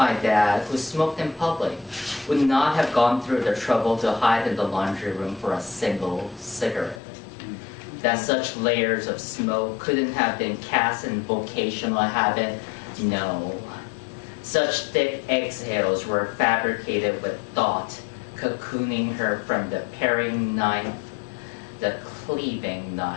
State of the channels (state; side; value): drops out; right; at 7.0 s